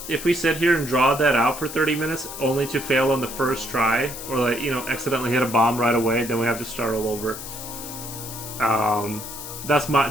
here and draw that out for 30 minutes only to fail on the first try, or like accidentally hit a bomb right away, then we have to start all over. That's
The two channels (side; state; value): left; noise; hiss, 10 dB below the sound